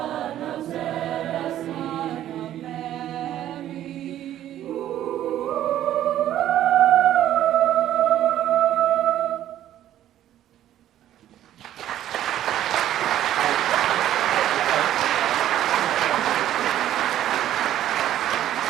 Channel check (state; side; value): quieter; left; 12.1 dB